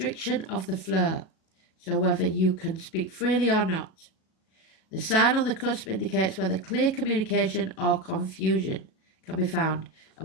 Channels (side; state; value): right; late; 37 ms